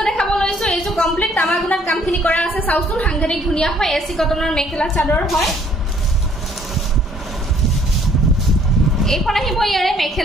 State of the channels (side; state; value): both; normal; correlation 0.61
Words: দেখাব লৈছো এইযোৰ কমপ্লিট তামাগুণাত কামখিনি কৰা আছে চাউচুন সাংঘাতিক ধুনিয়া হয় এসি কটনৰ মেখেলা চাদৰ হয় এইখন আহিব ইয়াৰে